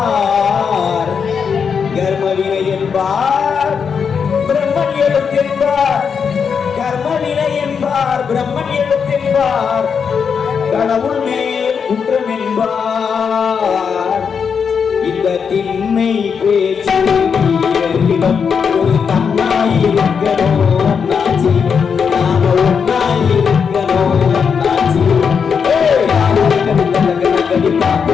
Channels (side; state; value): right; quieter; 6.4 dB